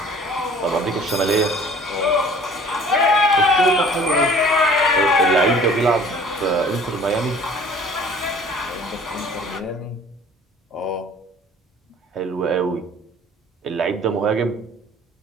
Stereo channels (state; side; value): normal; both; correlation 0.50